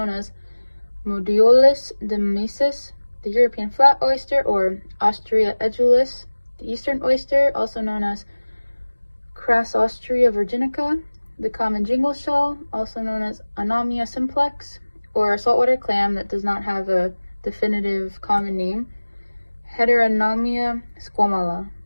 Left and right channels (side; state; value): both; inverted; correlation -1.00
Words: as Modiolus demesis, the European flat oyster, or Ostrea edulis, the eastern oyster, also known as Crassostrea virginica, the common jingle shell, also known as Anomia simplex, or a saltwater clam that does not have a definitive common name, Heteronomia squamala.